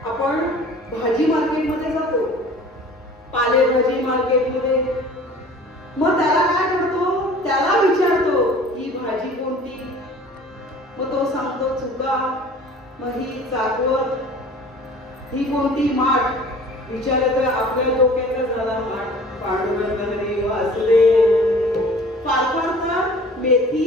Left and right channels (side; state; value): both; normal; correlation 0.46